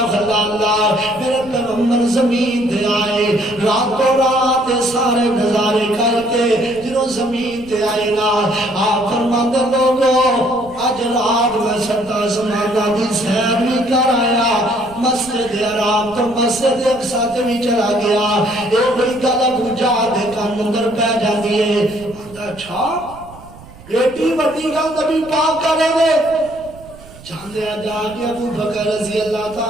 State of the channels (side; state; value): right; noise; rumble, 21 dB below the sound